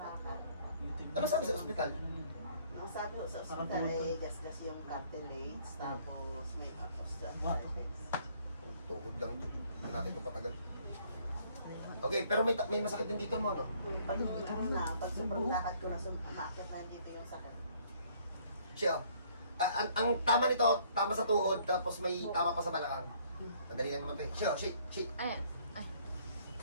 ano sabi sa ospital? Ang sabi ko sa ospital ay gasgas yung cartilage, tapos may osteoarthritis. Tuhod lang. Hindi natin ito patagal. Okay, pero may masakit din dito mo, no? Pag sobrang lakad ko na sumakit na dito yung sakit. Siya, ang tama nito, tama sa tuhod, tapos may tama pa sa balakang. Madali lang naman ito. Siya, shake. Ayan.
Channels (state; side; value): inverted; both; correlation -0.61